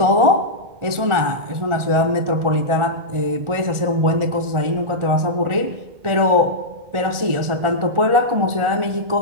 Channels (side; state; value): left; late; 1.4 ms